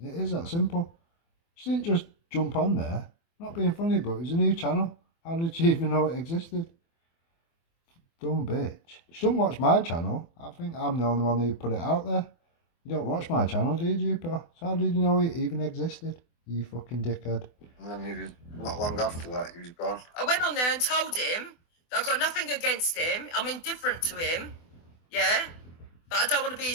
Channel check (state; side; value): late; right; 24 ms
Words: is that simple. She didn't just jump on there. Not being funny, but it was a new channel. How did she even know it existed? Dumb bitch. She don't watch my channel. I think I'm the only one who put it out there. You don't watch my channel, do you, Jupiter? So how did you know it even existed? You fucking dickhead. And then he was, not long after that, he was gone. I went on there and told him that I've got nothing against him. I'm indifferent to him. Yeah? But I don't want to be